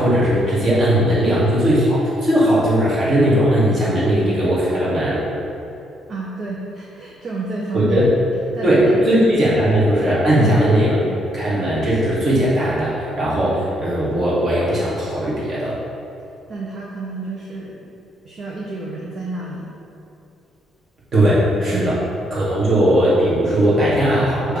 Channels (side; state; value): both; normal; correlation 0.73